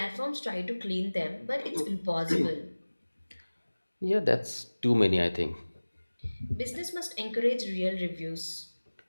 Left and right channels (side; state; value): both; inverted; correlation -1.00